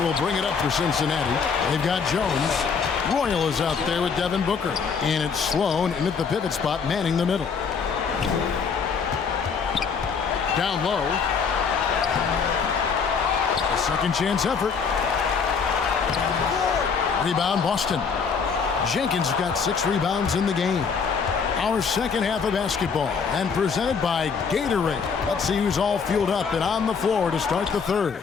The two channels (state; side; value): quieter; right; 5.9 dB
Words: bring it up for Cincinnati. They've got Jones. Royal is out there with Devin Booker. And it's Sloan in at the pivot spot, manning the middle. Down low. A second chance effort. Rebound, Boston. Jenkins got 6 rebounds in the game. Our second half of basketball, and presented by Gatorade. Let's see who's all fueled up and on the floor to start the third.